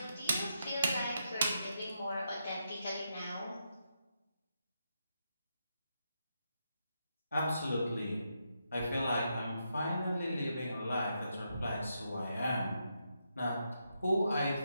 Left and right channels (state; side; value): inverted; both; correlation -0.82